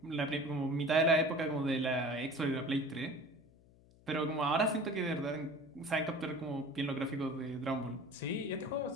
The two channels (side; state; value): left; noise; hum, 26 dB below the sound